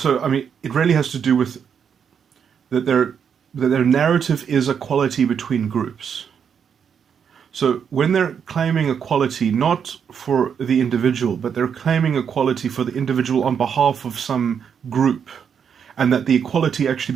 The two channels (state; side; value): quieter; left; 7.4 dB